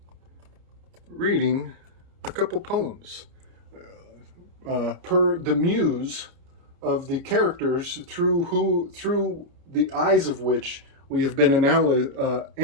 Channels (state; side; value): late; left; 29 ms